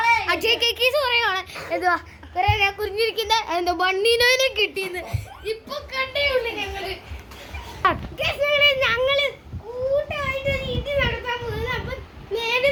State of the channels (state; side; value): identical; both; correlation 1.00